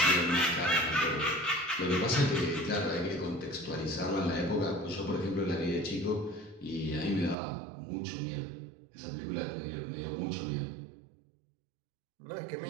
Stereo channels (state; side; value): drops out; left; at 7.4 s